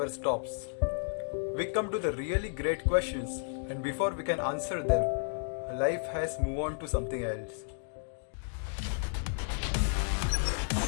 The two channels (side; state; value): right; silent; digital silence